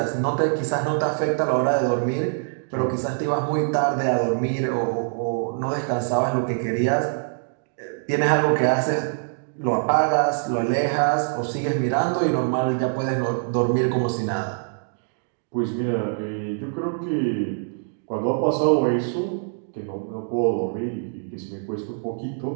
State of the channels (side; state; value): left; silent; digital silence